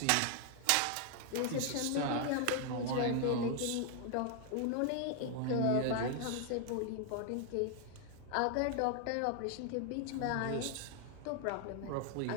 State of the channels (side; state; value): both; different; correlation 0.00